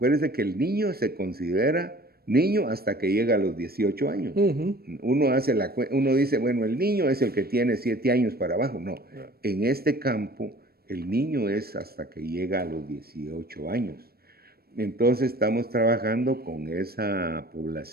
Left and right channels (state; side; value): late; left; 0.45 ms